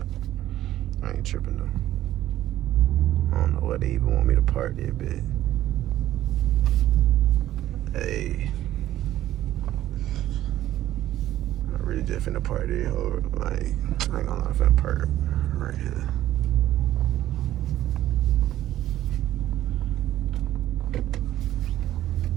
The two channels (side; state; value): left; quieter; 13.4 dB